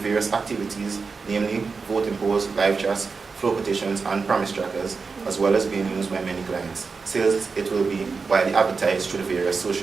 activities, namely voting polls, live chats, flow petitions, and promise trackers, as well as being used by many clients, since it will be widely advertised through the various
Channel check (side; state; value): left; quieter; 4.7 dB